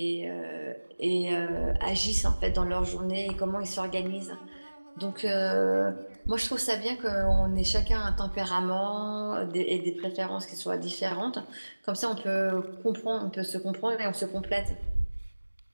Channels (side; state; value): both; inverted; correlation -1.00